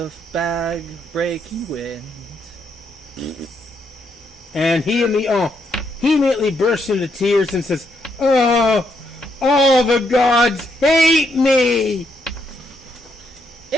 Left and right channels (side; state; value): both; normal; correlation 0.77